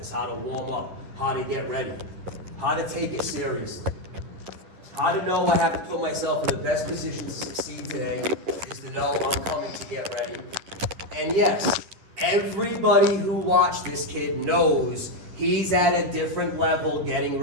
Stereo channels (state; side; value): late; left; 11 ms